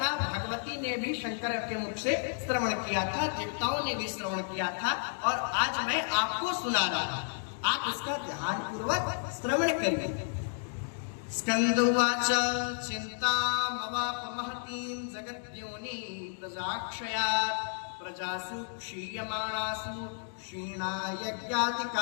भगवती ने भी शंकर के मुख से श्रवण किया था, देवताओं ने भी श्रवण किया था, और आज मैं आपको सुना रहा हूं, आप इसका ध्यान पूर्वक श्रवण करिए। स्कंदुवाच चिंतामवाप महतीं जगद्योनि प्रजाक्षयात् प्रजासु क्षीयमाणासु क्षीणा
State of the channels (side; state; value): right; silent; digital silence